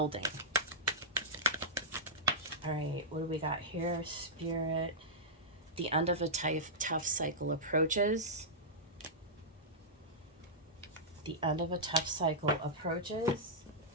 All right, what do we got here? Spirit, the end of a tough cycle approaches. The end of a tough cycle approaches.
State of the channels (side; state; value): both; normal; correlation -0.11